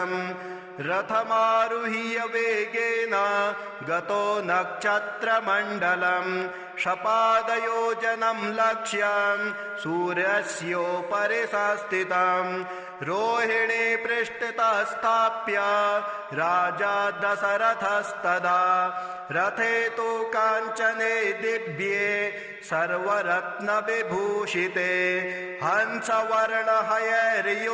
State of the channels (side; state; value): both; identical; correlation 1.00